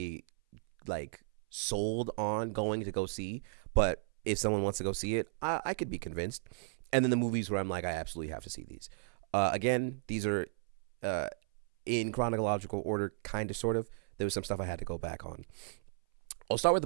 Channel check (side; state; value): left; silent; 55 dB below the other